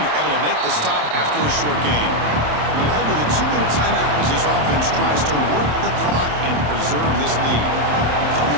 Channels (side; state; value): left; late; 27 ms